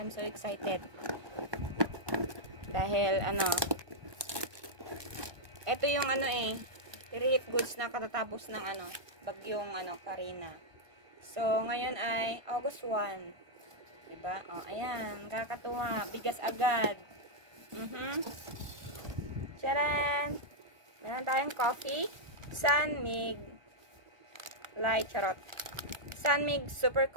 so excited. Dahil, ito yung relief goods na katatapos ng bagyong Karina. So, ngayon ay August 1. Diba? O, ayan. Kakatuwa. Bigas agad. Charan! Meron tayong coffee. Sunmig. Light, charot. Sunmig Super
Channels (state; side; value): late; left; 1.2 ms